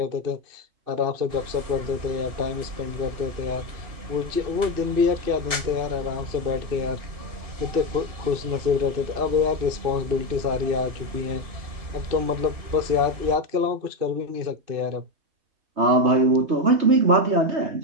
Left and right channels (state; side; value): late; left; 2.8 ms